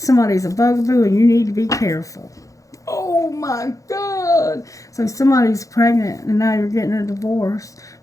a bugaboo, and you need to be careful. Oh my God. So somebody's pregnant, and now you're getting a divorce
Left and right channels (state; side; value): late; right; 0.16 ms